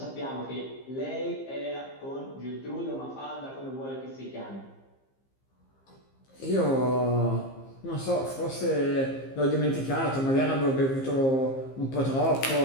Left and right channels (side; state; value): right; late; 15 ms